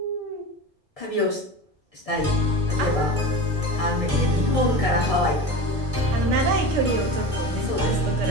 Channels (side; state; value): both; normal; correlation 0.30